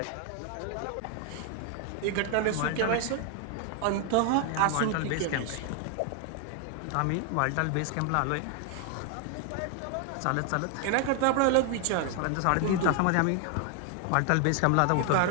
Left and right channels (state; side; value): different; both; correlation 0.00